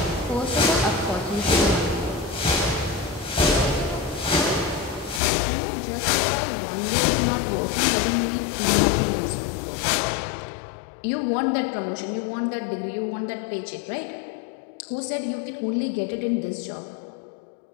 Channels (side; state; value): right; drops out; at 5.2 s